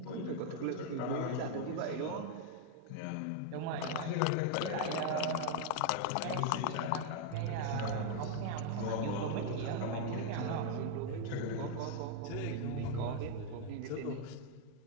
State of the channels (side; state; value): both; different; correlation 0.00